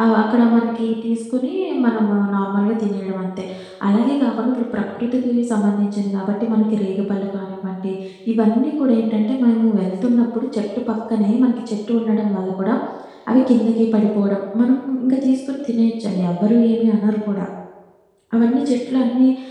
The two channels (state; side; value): identical; both; correlation 1.00